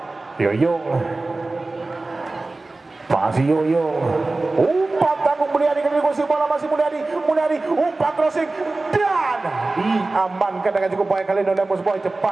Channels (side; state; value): left; quieter; 3.2 dB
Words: Yoyong, masih Yoyong, umpan tanggung Mulyadi kali ini kuasai bola, masih Mulyadi umpan crossing dan diamankan dengan cukup baik kali ini oleh Mus Boy.